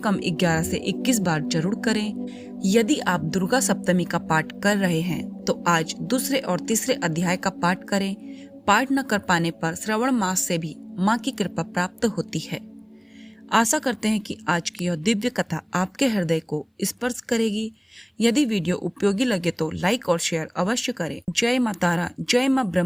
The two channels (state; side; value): identical; both; correlation 1.00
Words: 11 से 21 बार जरूर करें। यदि आप दुर्गा सप्तमी का पाठ कर रहे हैं तो आज दूसरे और तीसरे अध्याय का पाठ करें। पाठ न कर पाने पर श्रवण मास से भी माँ की कृपा प्राप्त होती है। आशा करते हैं कि आज की यह दिव्य कथा आपके हृदय को स्पर्श करेगी। यदि वीडियो उपयोगी लगे तो लाइक और शेयर अवश्य करें। जय माँ तारा, जय माँ